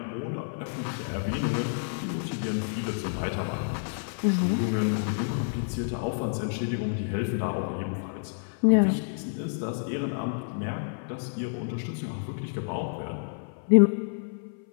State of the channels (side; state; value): right; silent; 59 dB below the other